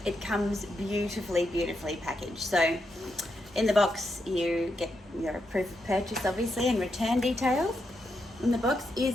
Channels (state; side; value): normal; both; correlation 0.83